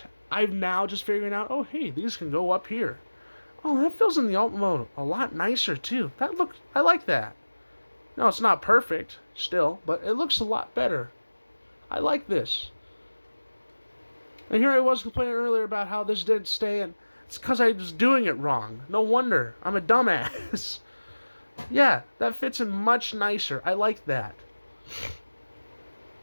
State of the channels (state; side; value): inverted; both; correlation -1.00